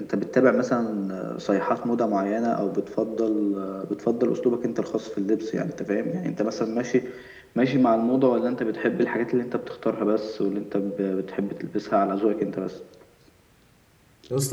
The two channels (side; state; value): both; identical; correlation 1.00